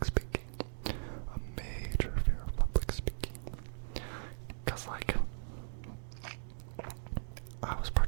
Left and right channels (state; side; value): silent; left; digital silence